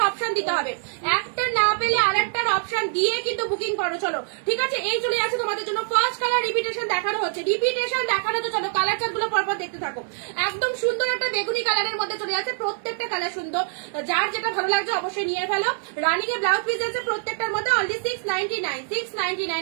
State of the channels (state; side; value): silent; left; digital silence